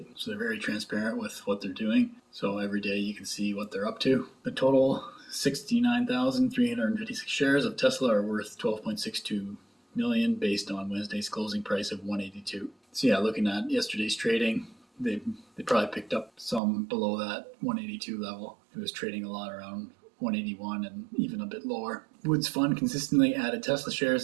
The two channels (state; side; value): drops out; left; at 16.6 s